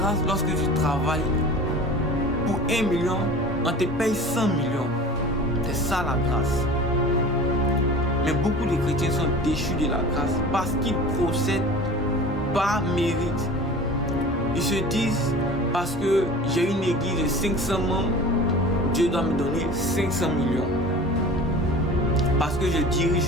lorsque tu travailles pour 1 million, on te paye 100 millions. C'est ça la grâce. Mais beaucoup de chrétiens sont déchus de la grâce parce qu'ils procèdent par mérite. Ils se disent, parce que j'ai une église de 500 membres, Dieu doit me donner 500 millions. Parce que je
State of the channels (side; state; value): both; normal; correlation 0.39